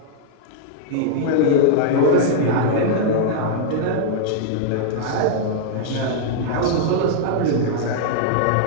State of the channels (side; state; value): both; different; correlation -0.01